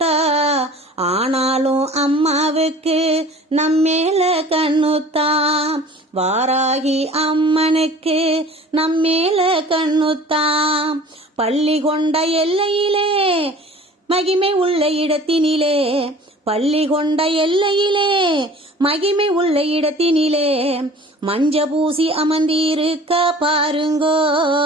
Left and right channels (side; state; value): both; normal; correlation 0.45